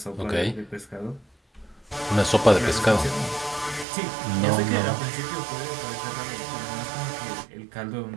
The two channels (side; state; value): left; drops out; at 3.9 s